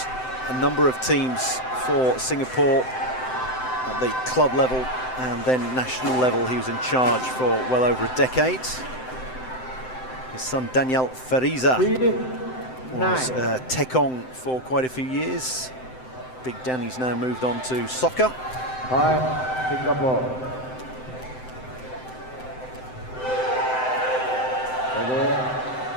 a number of teams for Singapore at the club level and then national level. He was in charge for well over a decade. His son Daniel Fariza was Tekong for quite a few years. Big Danny's now moved on to soccer. Singapore.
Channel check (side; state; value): right; late; 7.8 ms